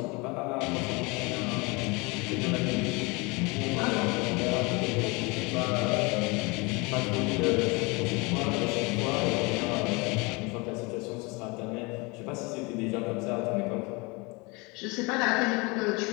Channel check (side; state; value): right; quieter; 27.1 dB